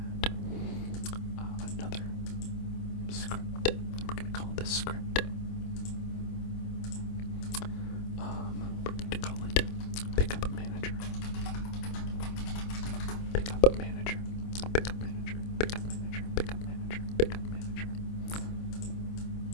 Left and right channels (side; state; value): right; late; 26 ms